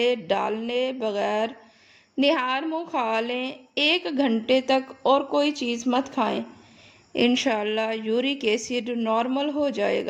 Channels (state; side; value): identical; both; correlation 1.00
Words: ڈالنے بغیر نہار منہ کھا لیں۔ 1 گھنٹے تک اور کوئی چیز مت کھائیں، انشاءاللہ یورک ایسڈ نارمل ہو جائے